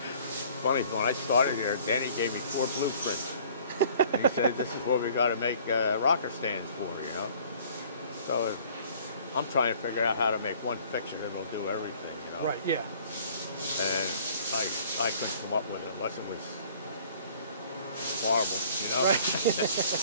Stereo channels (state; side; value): inverted; both; correlation -0.54